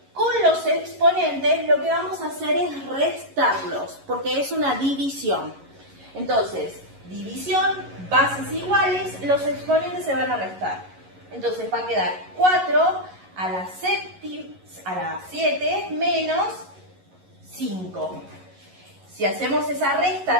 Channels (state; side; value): late; left; 11 ms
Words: con los exponentes lo que vamos a hacer es restarlos, porque es una división. Entonces, división, bases iguales, los exponentes se van a restar. Entonces va a quedar 4 a la 7 menos 5. Si hacemos esa resta